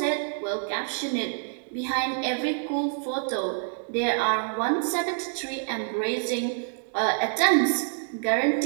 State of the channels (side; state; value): left; silent; digital silence